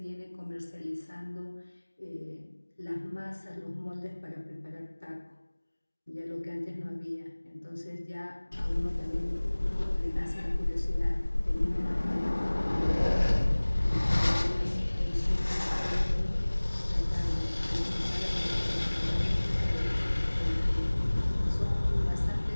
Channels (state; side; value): inverted; both; correlation -1.00